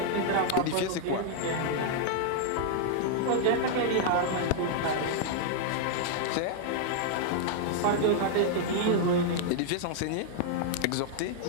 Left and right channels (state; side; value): different; both; correlation -0.01